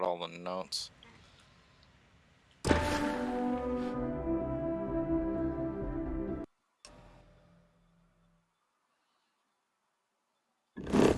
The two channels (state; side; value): identical; both; correlation 1.00